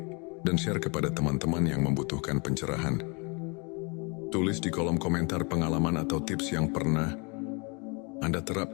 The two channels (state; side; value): quieter; right; 31.9 dB